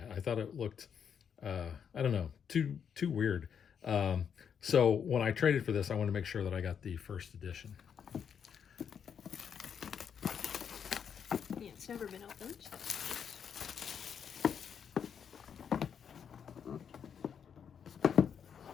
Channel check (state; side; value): quieter; right; 7.5 dB